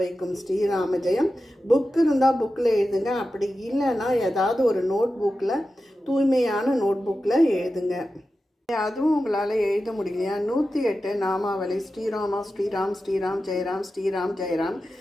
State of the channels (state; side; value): normal; both; correlation 0.92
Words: வைக்கும் ஸ்ரீராம ஜெயம். புக் இருந்தால் புக்கில் எழுதுங்க, அப்படி இல்லைன்னா ஏதாவது ஒரு நோட் புக்கில், தூய்மையான நோட் புக்கில் எழுதுங்க. அதுவும் உங்களால் எழுத முடியலையா? 108 நாமாவளி ஸ்ரீராமா ஸ்ரீராம் ஸ்ரீராம் ஜெயராம் ஸ்ரீராம் ஜெயராம்